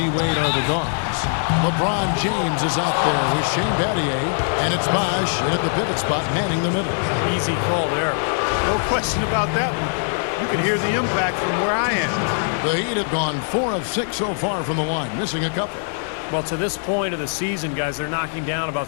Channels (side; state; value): right; silent; digital silence